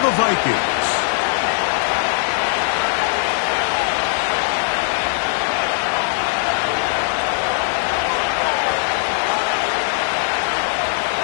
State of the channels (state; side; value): silent; right; 63 dB below the other